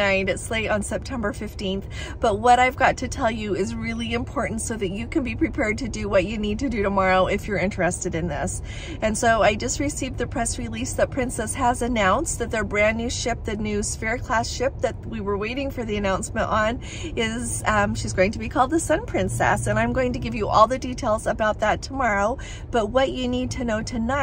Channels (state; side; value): identical; both; correlation 1.00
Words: it's late on September 15th, but what I've got to tell you is really important so that you can be prepared to do what you need to do tomorrow if you're interested in this. And so I just received the press release that Princess has announced that their brand new ship, the new Sphere class ship that we were waiting for the announcement on, is she's going to be called the Sun Princess, and I'm going to give you all the details about that tomorrow. But what you need to know